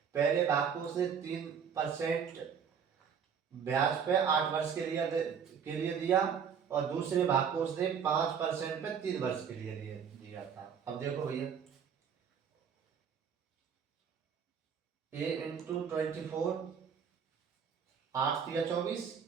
पहले भाग को उसने 3% ब्याज पे 8 वर्ष के लिए दिया, और दूसरे भाग को उसने 5% पे 3 वर्ष के लिए दिया था। अब देखो भैया, ए इंटू 24, 8 या 24,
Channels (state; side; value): quieter; left; 7.2 dB